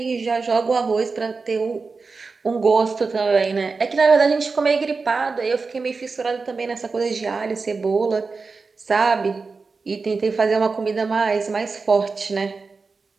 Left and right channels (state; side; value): quieter; left; 4.4 dB